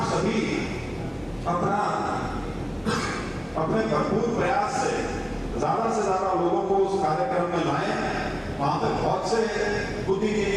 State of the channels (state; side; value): identical; both; correlation 1.00